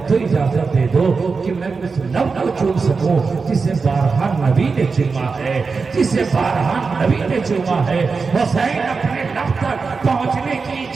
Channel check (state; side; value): quieter; left; 4.7 dB